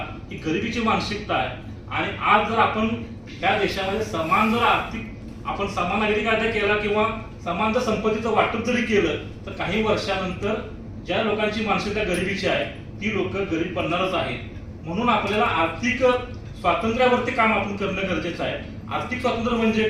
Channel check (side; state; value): both; identical; correlation 1.00